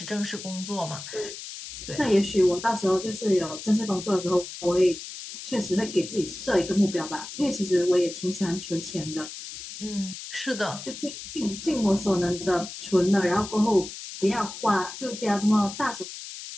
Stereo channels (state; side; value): noise; left; hiss, 11 dB below the sound